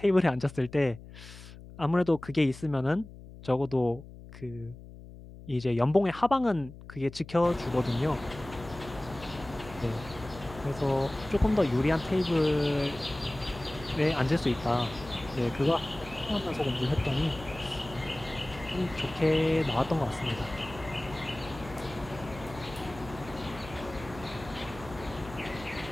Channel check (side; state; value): left; noise; hum, 16 dB below the sound